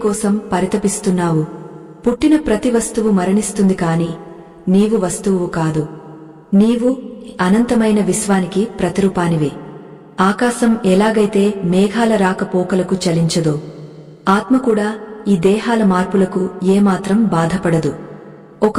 పరితపిస్తున్నావు? పుట్టిన ప్రతి వస్తువు మరణిస్తుంది, కాని నీవు వస్తువు కాదు. నీవు అనంతమైన విశ్వానికి ప్రతిరూపానివి. ఆకాశం ఎలాగైతే మేఘాల రాకపోకలకు చలించదో, ఆత్మ కూడా ఈ దేహాల మార్పులకు ఏమాత్రం బాధపడదు. ఒక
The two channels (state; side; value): identical; both; correlation 1.00